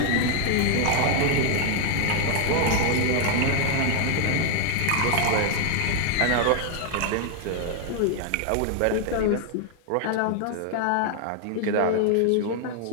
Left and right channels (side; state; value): both; different; correlation 0.00